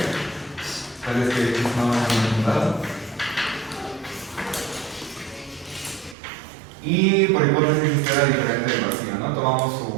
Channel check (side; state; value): left; drops out; at 6.2 s